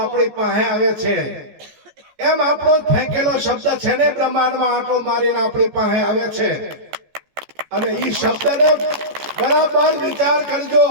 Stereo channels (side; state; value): left; late; 14 ms